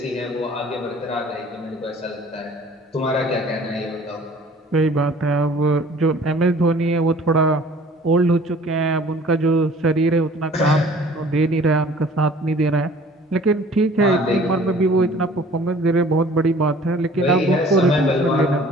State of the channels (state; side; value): normal; both; correlation 0.51